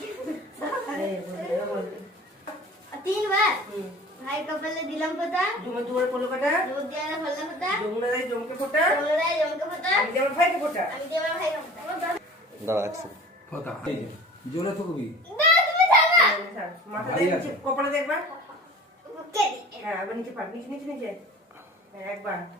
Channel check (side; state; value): both; normal; correlation 0.43